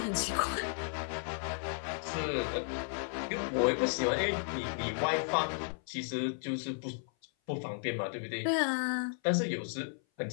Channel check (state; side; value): silent; right; 55 dB below the other